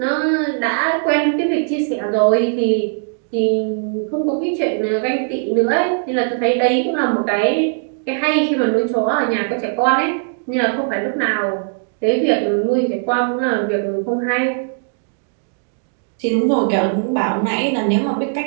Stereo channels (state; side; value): silent; left; digital silence